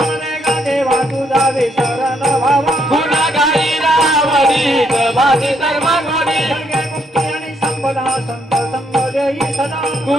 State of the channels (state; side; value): normal; both; correlation 0.73